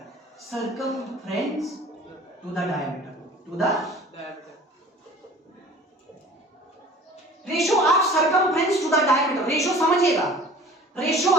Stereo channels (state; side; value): normal; both; correlation 0.45